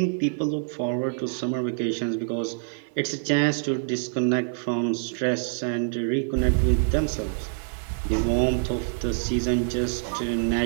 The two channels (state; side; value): silent; left; 58 dB below the other